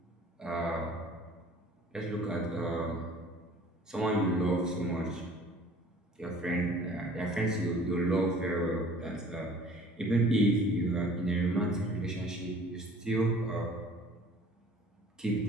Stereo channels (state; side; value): normal; both; correlation 0.50